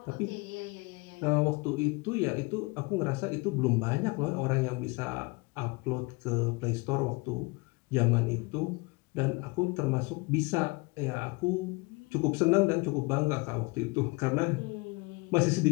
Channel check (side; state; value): right; quieter; 26.3 dB